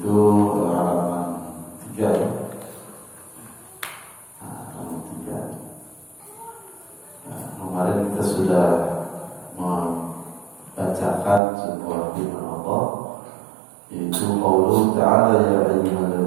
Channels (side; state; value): left; drops out; at 11.4 s